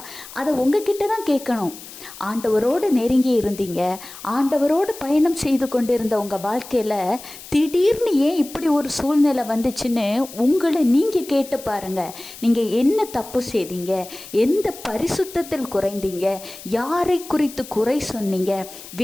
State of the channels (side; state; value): left; noise; hiss, 16 dB below the sound